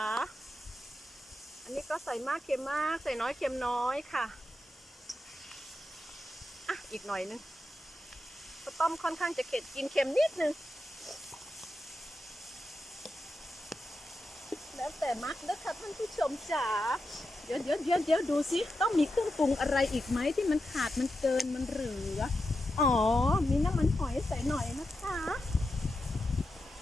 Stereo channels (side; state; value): both; normal; correlation 0.88